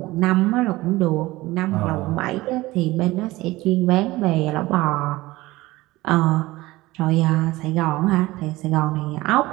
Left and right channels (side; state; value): left; quieter; 19.1 dB